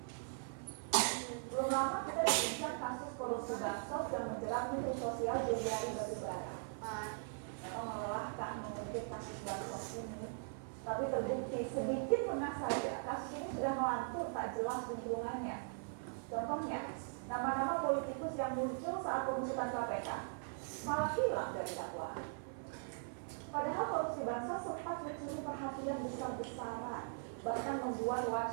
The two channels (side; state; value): left; silent; 51 dB below the other